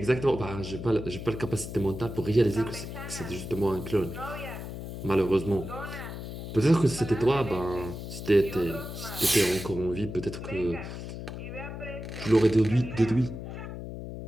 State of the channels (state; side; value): noise; left; hum, 8 dB below the sound